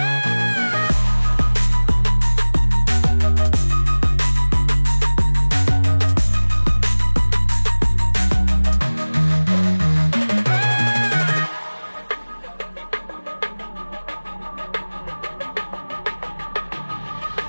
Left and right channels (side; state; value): both; inverted; correlation -1.00